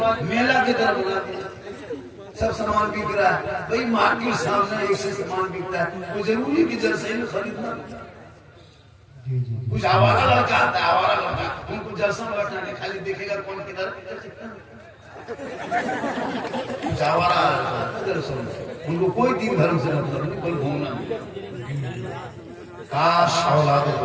मेला की तरह बना दिया। सब सामान बिक रहा है भाई, मार्केट सामने एक से सामान बिकता है, वो जरूरी कि जलसे में खरीदना। कुछ आवारा लड़का आता है, आवारा लड़का, उनको जलसा में बैठना नहीं, खाली देखेगा कौन किधर, कुछ आवारा जलसों में, उनको कोई दिन धर्म से मतलब नहीं, कोई घूमना नहीं। काश औलादों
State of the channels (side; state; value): both; identical; correlation 1.00